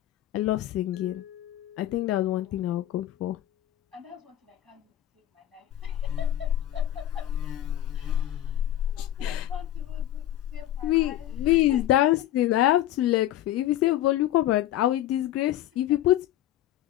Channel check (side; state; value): right; quieter; 13.1 dB